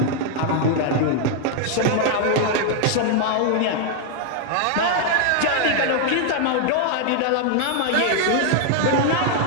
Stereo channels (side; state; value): both; different; correlation 0.00